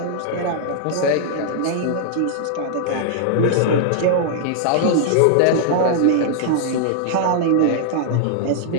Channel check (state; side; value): different; both; correlation -0.01